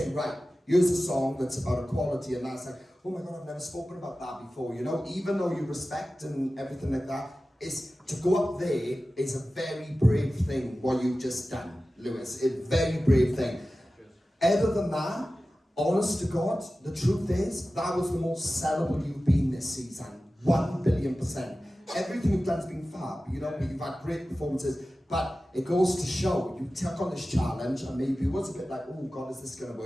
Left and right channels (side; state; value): both; normal; correlation 0.95